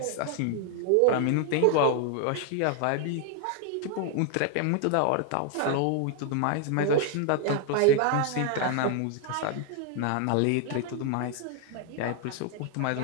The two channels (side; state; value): both; different; correlation 0.00